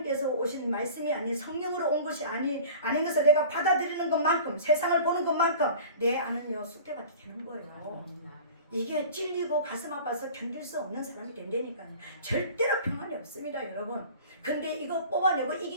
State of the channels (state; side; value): inverted; both; correlation -0.41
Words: 오신 말씀이 아닌 성령으로 온 것이 아닌 것을 내가 받아들이는 것만큼, 세상을 보는 것만큼 내 안은요 쑥대밭이 되는 거예요. 이게 찔리고 가슴 아파서 견딜 수 없는 사람이 된다니까요. 절대로 평안이 없습니다, 여러분. 근데 이거 뽑아내고